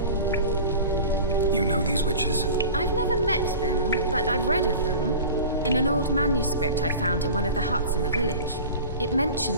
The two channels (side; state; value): both; inverted; correlation -0.36